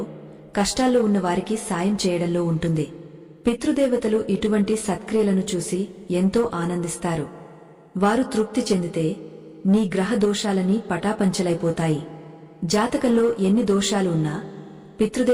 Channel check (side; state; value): both; identical; correlation 1.00